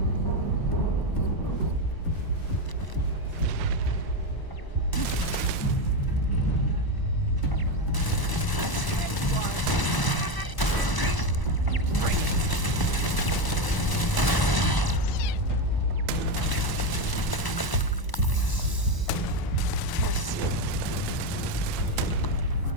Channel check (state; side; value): late; right; 1.0 ms